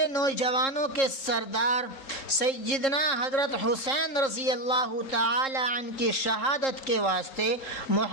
نوجوانوں کے سردار سیدنا حضرت حسین رضی اللہ تعالی عنہ کی شہادت کے واسطے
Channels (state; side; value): late; right; 3.7 ms